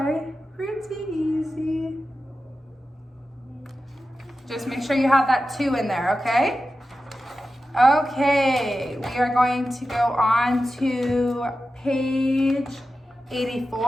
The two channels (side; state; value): both; normal; correlation 0.92